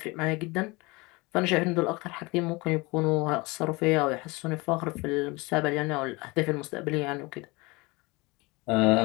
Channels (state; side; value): quieter; right; 24.9 dB